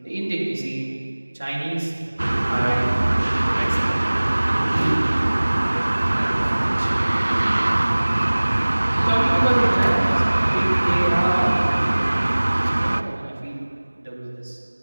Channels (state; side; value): inverted; both; correlation -1.00